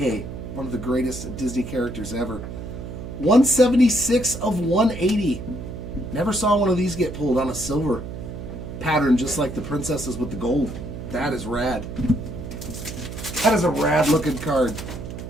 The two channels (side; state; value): right; noise; hum, 9 dB below the sound